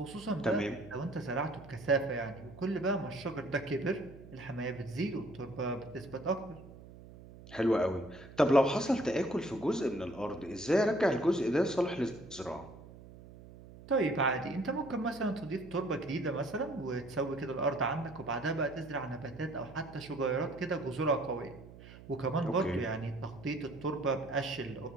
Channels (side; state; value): right; noise; hum, 18 dB below the sound